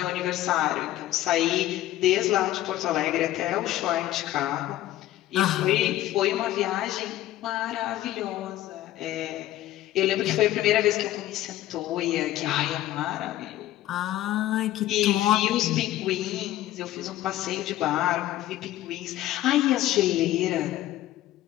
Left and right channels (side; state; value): right; quieter; 14.4 dB